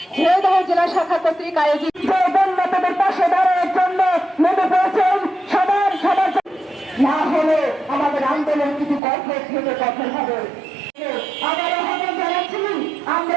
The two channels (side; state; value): left; drops out; at 9.0 s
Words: ঝিনাইদহ জেলা শাখা কর্তৃক আয়োজিত বন্যাদের পাশে দাঁড়ানোর জন্য নেমে পড়েছেন সবার না হলে আমাদের আন্দোলন কিছু কঠোর থেকে কঠোর হবে।